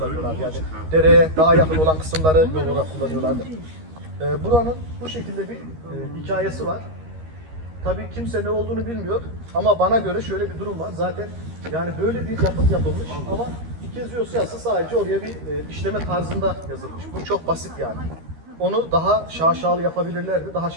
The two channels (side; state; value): left; late; 13 ms